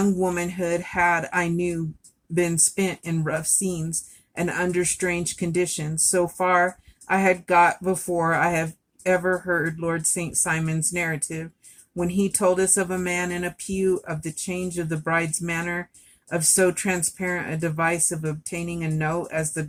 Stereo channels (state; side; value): identical; both; correlation 1.00